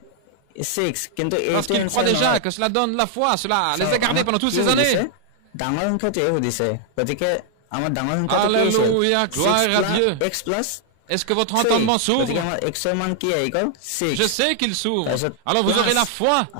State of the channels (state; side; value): different; both; correlation 0.00